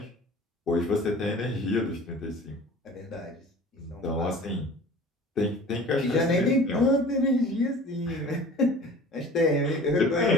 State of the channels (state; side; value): normal; both; correlation 0.43